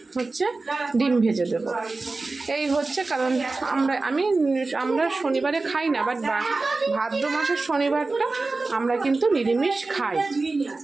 হচ্ছে ডিম ভেজে দেবো। এই হচ্ছে কারণ আমরা শনিবারে খাই না, বাট ভাদ্র মাসের শনিবারটা আমরা কিন্তু নিরামিষ খাই।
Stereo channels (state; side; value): quieter; left; 3.6 dB